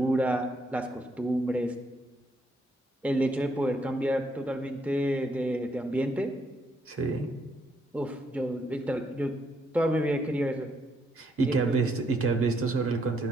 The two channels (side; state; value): both; normal; correlation 0.74